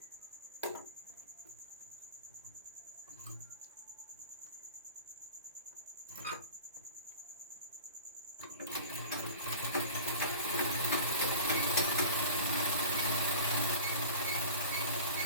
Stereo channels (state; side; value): inverted; both; correlation -0.38